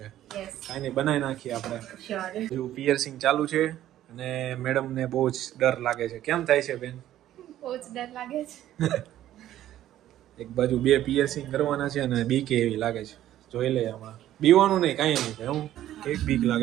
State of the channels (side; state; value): left; quieter; 12.8 dB